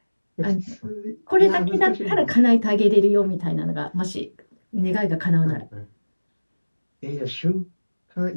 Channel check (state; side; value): inverted; both; correlation -1.00